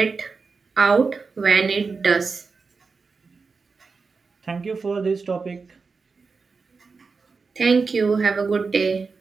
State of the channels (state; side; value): quieter; left; 4.6 dB